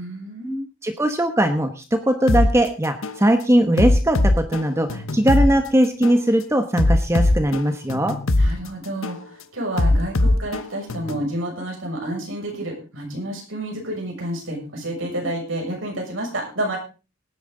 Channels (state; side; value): normal; both; correlation 0.83